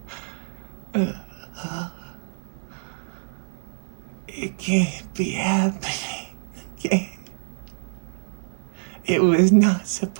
It can't be happening again. It was not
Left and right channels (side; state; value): left; silent; 61 dB below the other